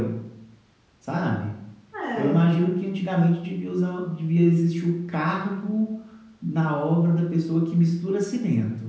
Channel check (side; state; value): both; identical; correlation 1.00